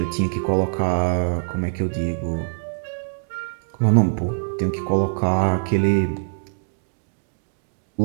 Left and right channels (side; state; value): left; silent; digital silence